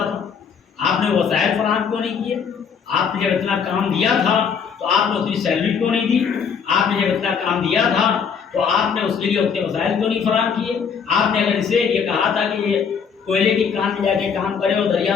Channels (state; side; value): quieter; right; 6.5 dB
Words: تھا. آپ نے وسائل فراہم کیوں نہیں کیے؟ آپ نے جب اتنا کام دیا تھا تو آپ نے اتنی سیلری کیوں نہیں دی؟ آپ نے جب اتنا کام دیا تھا تو آپ نے اس کے لیے اتنے وسائل کیوں نہیں فراہم کیے؟ آپ نے اگر اسے یہ کہا تھا کہ یہ کوئلے کی کان میں جا کے کام کرے اور دریا